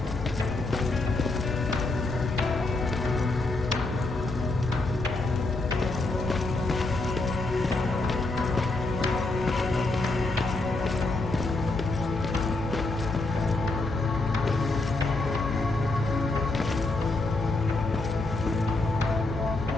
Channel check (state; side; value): quieter; right; 3.1 dB